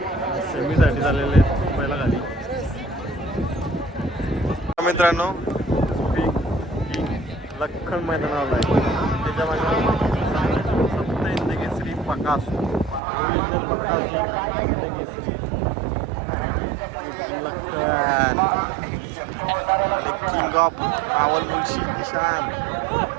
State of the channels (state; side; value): drops out; left; at 13.0 s